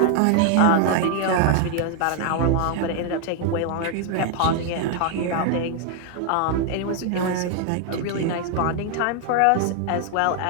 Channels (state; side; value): different; both; correlation 0.00